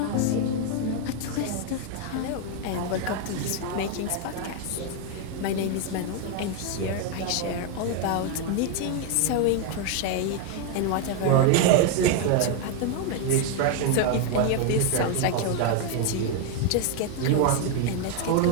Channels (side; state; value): both; different; correlation 0.01